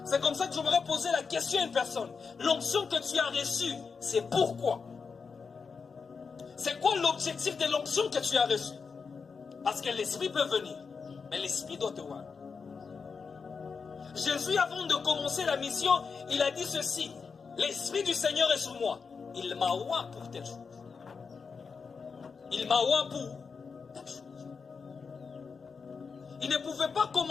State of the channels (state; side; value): quieter; right; 5.3 dB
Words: C'est comme ça que je voudrais poser la question à une personne. L'onction que tu as reçue, c'est pourquoi? C'est quoi l'objectif de l'onction que tu as reçue? Parce que l'Esprit peut venir, mais l'Esprit doit te voir. Jésus, avant de commencer la mission, il a dit ceci. L'Esprit du Seigneur est sur moi. Il m'a oint pour telle chose. Il m'a oint pour telle chose. Il ne pouvait pas